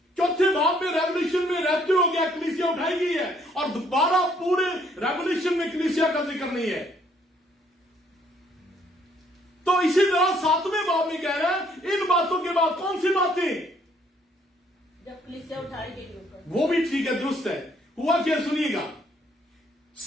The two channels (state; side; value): normal; both; correlation 0.66